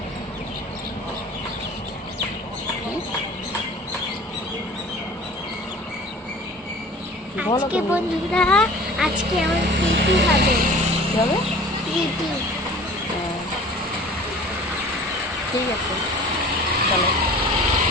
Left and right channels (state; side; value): normal; both; correlation 0.44